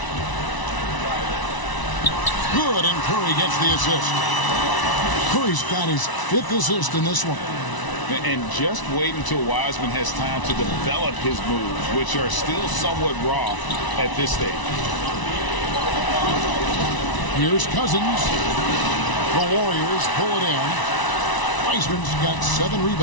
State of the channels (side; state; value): right; late; 1.0 ms